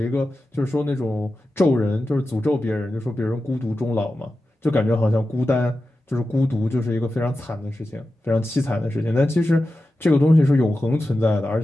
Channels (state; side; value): normal; both; correlation 0.92